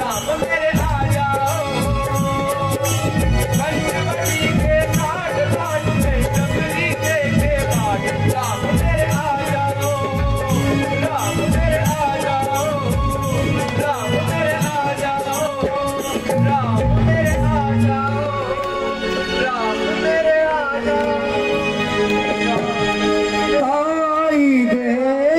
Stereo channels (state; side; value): identical; both; correlation 1.00